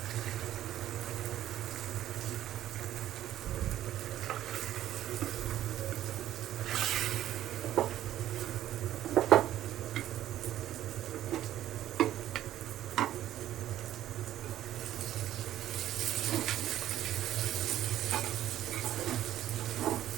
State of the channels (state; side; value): quieter; left; 12.6 dB